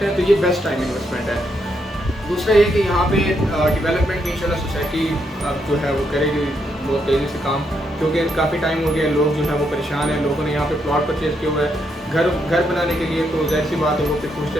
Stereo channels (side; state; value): both; normal; correlation 0.78